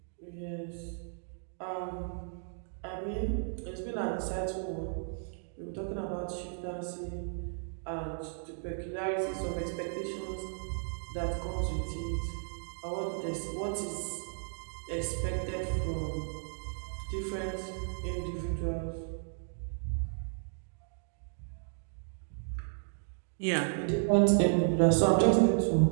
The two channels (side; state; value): left; silent; digital silence